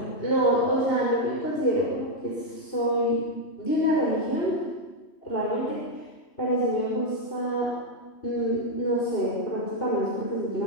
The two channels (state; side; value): late; right; 3.1 ms